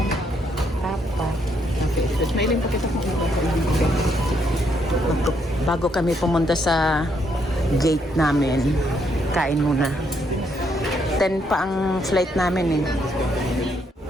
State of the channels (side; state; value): both; normal; correlation 0.74